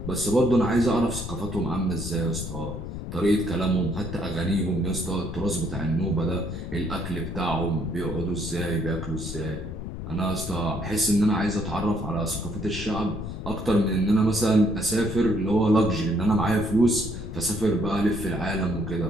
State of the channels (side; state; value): left; noise; rumble, 7 dB below the sound